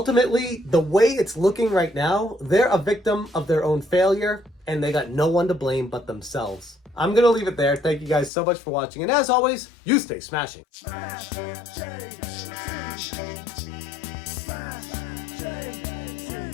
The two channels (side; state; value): right; drops out; at 8.3 s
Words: the way it's looking right now, they're a victim of their own failure, and they got no one to blame but themselves. I'm going to leave it there. Thank you guys so much for watching. And as always, you stay smashing. Smash,